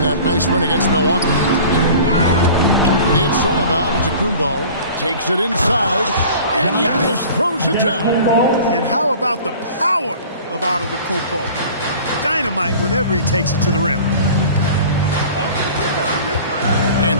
that nice win against Milwaukee. It's all about Antetokounmpo. Takes it inside, and Giannis throws it down. And how about the power of Antetokounmpo? Dynamite whenever he takes it to the rim.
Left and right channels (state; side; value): inverted; both; correlation -0.43